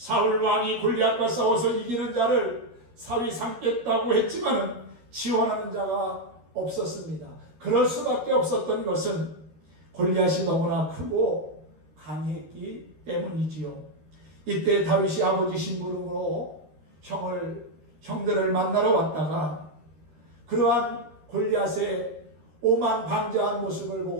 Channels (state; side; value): late; left; 13 ms